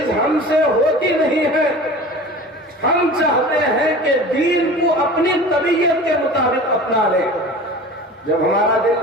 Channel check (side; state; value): both; normal; correlation 0.38